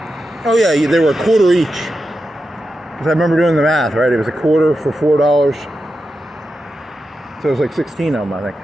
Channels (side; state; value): both; normal; correlation 0.89